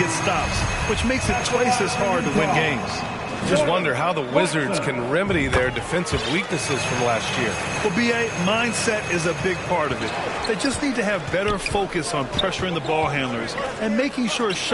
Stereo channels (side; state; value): both; identical; correlation 1.00